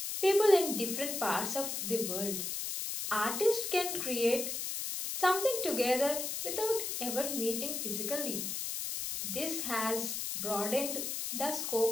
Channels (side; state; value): left; noise; hiss, 3 dB below the sound